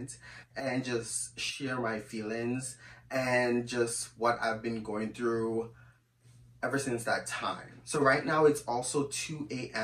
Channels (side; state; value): both; identical; correlation 1.00